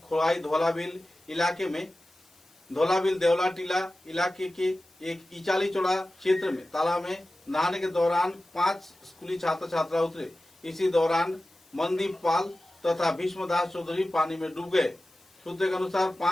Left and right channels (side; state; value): left; noise; hiss, 30 dB below the sound